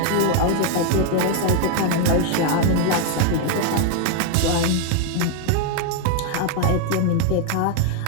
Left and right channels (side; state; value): both; different; correlation 0.00